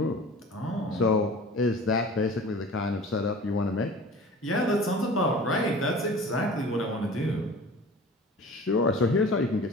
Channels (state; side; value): normal; both; correlation 0.41